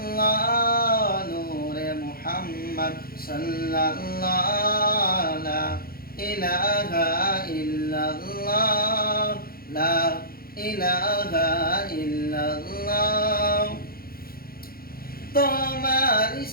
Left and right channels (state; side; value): late; right; 0.43 ms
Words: নূরে মুহাম্মদ সাল্লাল্লাহ লা ইলাহা ইল্লাল্লাহ লা ইলাহা ইল্লাল্লাহ তোমার